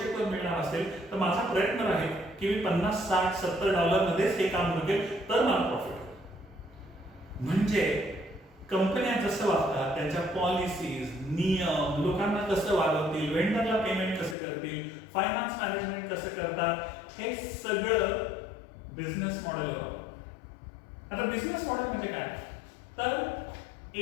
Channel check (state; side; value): drops out; right; at 14.4 s